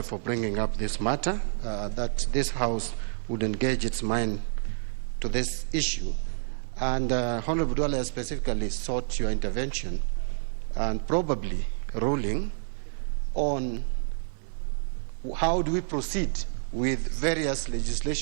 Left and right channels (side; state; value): left; silent; 59 dB below the other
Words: for bringing up this matter, that this House would engage its mind to this issue. And Honorable Duale specifically sought your intervention and probably ruling on how do we proceed with various